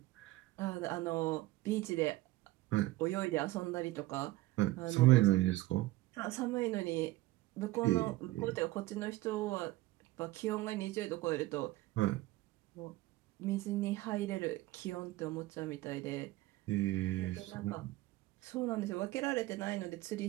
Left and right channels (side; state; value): left; quieter; 18.2 dB